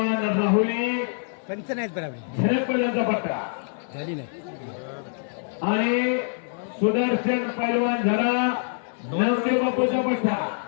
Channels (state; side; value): silent; right; 62 dB below the other